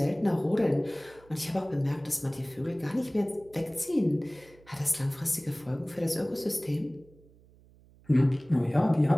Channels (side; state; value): right; noise; hum, 27 dB below the sound